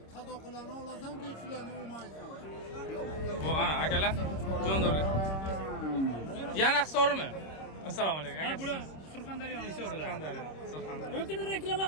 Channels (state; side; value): late; right; 26 ms